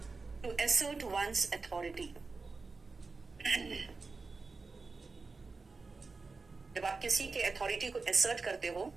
टू एसर्ट वंस अथॉरिटी। जब आप किसी के अथॉरिटी को एसर्ट करते हो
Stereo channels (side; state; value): left; quieter; 4.1 dB